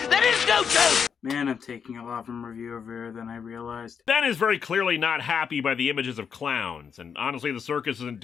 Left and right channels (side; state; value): right; quieter; 6.8 dB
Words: is no joke! Man, I'm taking a lot from Reviewception than I realized. Ben is very clearly not happy by the images of clowns, and honestly the circus isn't